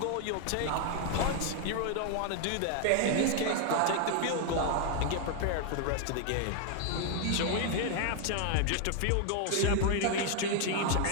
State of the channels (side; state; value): both; different; correlation 0.00